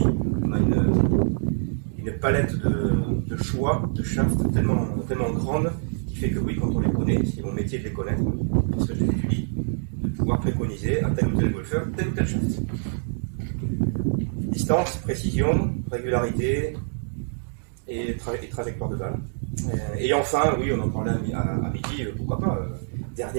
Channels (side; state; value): left; silent; digital silence